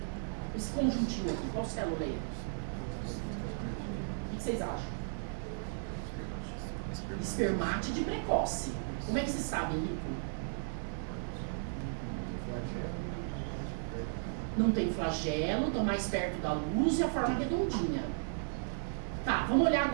Esse conjuntinho aqui, qual célula é? O que vocês acham? Espermátide precoce. Como é que vocês sabem, Nico? Não tem flagelo, estão mais perto da luz e a forma redondinha. Tá, vamos olhar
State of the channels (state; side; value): silent; left; digital silence